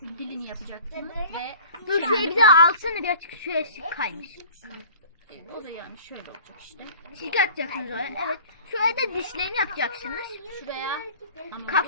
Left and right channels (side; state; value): both; inverted; correlation -0.45